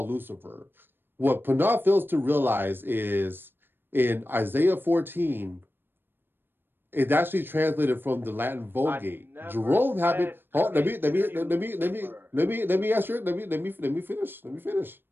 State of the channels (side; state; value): left; late; 0.098 ms